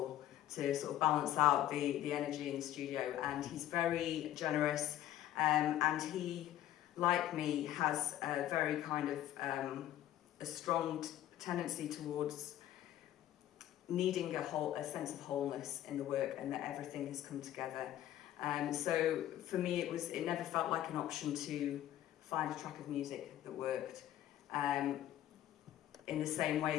to sort of balance out the energy in the studio. And he's very generous, and he, like me, has a very kind of a strong tendency towards needing a sense of wholeness in the work, and that everything has come together. So for me, it never felt like an option to find a track of music that worked. In the same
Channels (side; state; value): right; quieter; 12.7 dB